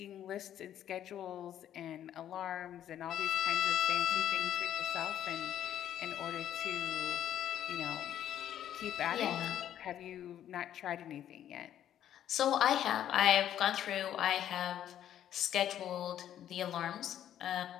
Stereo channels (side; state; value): right; quieter; 10.9 dB